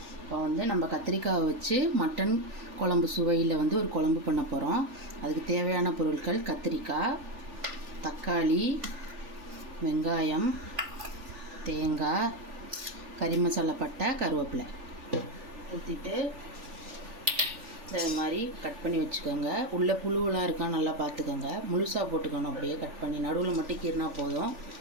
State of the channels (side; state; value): left; late; 3.4 ms